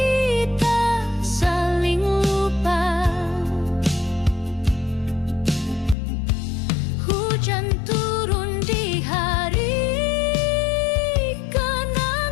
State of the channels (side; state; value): right; drops out; at 6.0 s